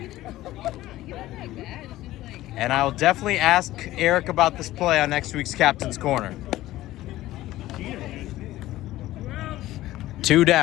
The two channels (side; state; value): right; quieter; 15.8 dB